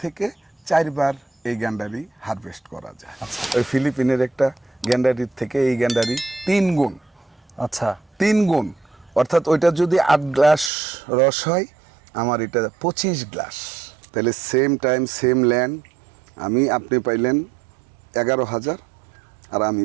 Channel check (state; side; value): drops out; left; at 10.7 s